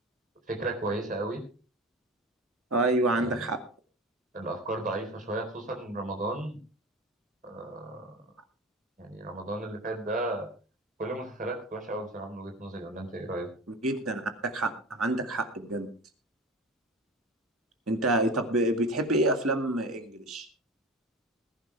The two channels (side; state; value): both; normal; correlation 0.32